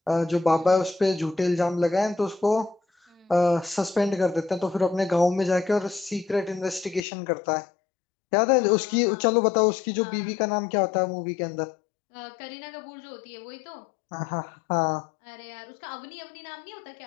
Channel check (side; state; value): right; drops out; at 7.1 s